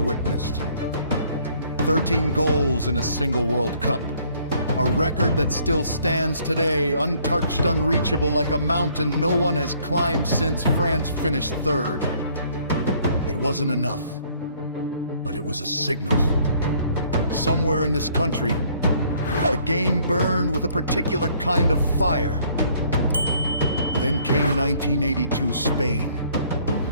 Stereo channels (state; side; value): inverted; both; correlation -0.62